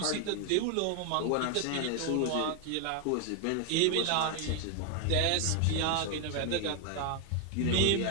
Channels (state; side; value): different; both; correlation 0.00